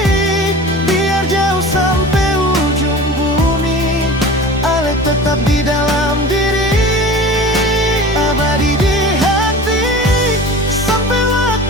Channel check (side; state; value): both; normal; correlation 0.37